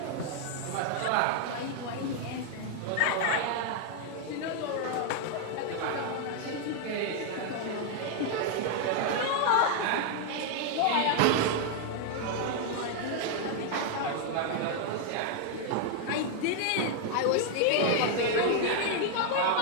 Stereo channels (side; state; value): both; different; correlation 0.00